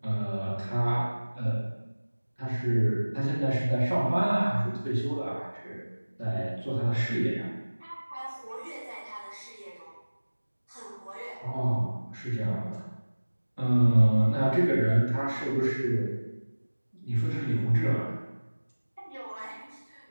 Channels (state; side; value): inverted; both; correlation -1.00